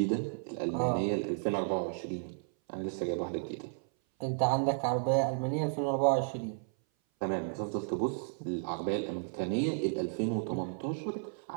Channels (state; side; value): silent; left; 56 dB below the other